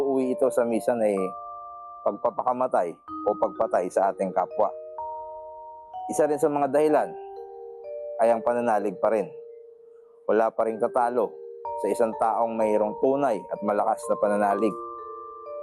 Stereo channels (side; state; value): both; identical; correlation 1.00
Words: ito sa minsan ay pagpapakamatay o pagpatay sa ating kapwa. Isa rin sa mga dahilan ay ang pananalig pa rin. Wala pa rin tatalo sa isang taong mayroong tunay at malakas na pananalig.